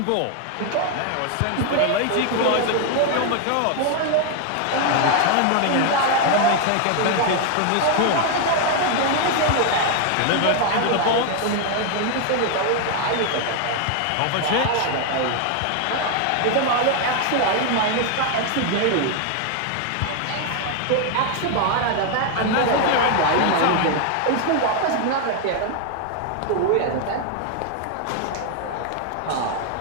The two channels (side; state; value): both; different; correlation 0.00